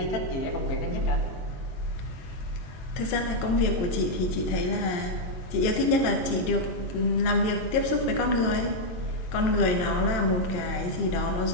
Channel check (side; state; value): right; late; 22 ms